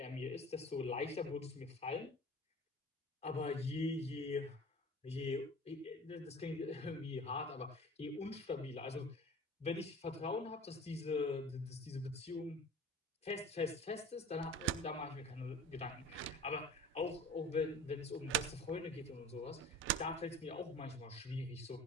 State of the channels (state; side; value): normal; both; correlation 0.41